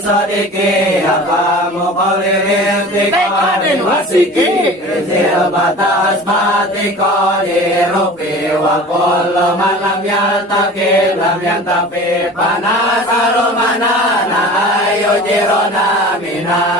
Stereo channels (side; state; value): both; normal; correlation 0.39